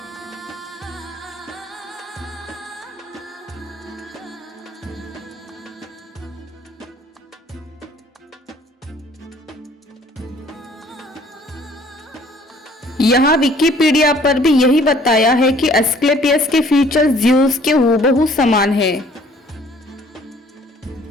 यहाँ विकिपीडिया पर भी यही बताया है कि एस्क्लेपियस के फीचर्स ज़्यूस के हूबहू समान है।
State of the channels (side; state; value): both; normal; correlation 0.57